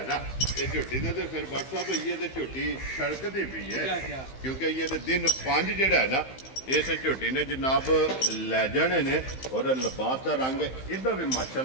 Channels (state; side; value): late; right; 15 ms